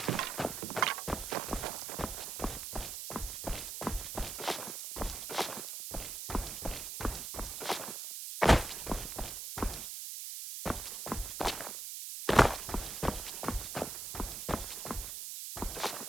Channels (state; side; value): noise; right; hiss, 6 dB below the sound